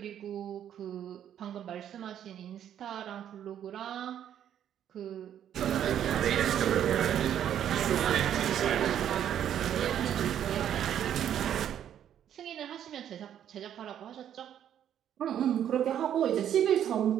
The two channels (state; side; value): quieter; left; 10.1 dB